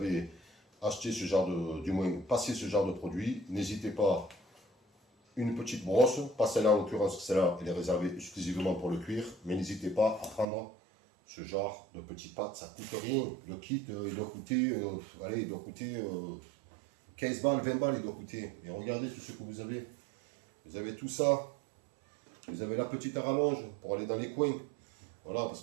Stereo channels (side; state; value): left; drops out; at 10.5 s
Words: acheté ce genre du moins passé ce genre de produit, n'hésitez pas, une petite brosse, pas celle-là en l'occurrence, celle-là elle est réservée exclusivement pour le cuir, mais n'hésitez pas à prendre ce genre de petites pâtes, ça coûte rien. Le kit, il doit coûter, allez, il doit coûter 15 balles, 20 balles, il doit coûter. Et regardez tout ce que vous avez. Vous avez tout ça. Vous avez la petite rallonge pour aller dans les coins. Voilà, parce